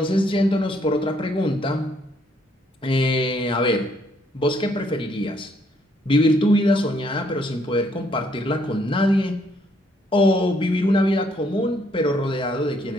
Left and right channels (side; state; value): both; normal; correlation 0.69